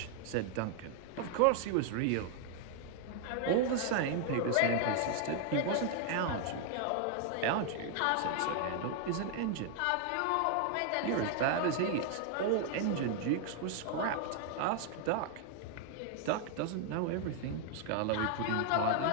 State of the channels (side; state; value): both; different; correlation 0.00